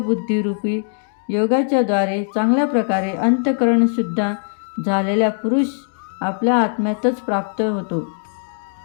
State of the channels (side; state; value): right; silent; digital silence